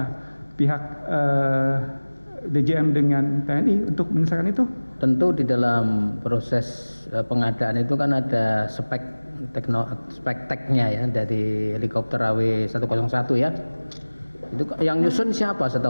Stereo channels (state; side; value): inverted; both; correlation -1.00